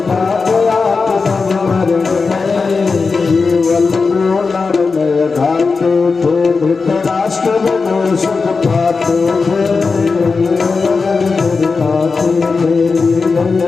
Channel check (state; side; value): quieter; right; 4.5 dB